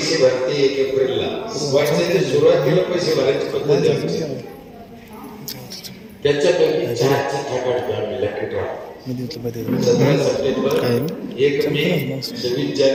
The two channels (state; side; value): identical; both; correlation 1.00